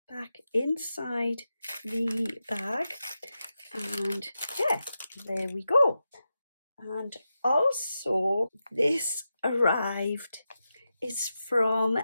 back inside the bag. And yeah, there we go. And also this arrived is from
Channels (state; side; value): inverted; both; correlation -0.90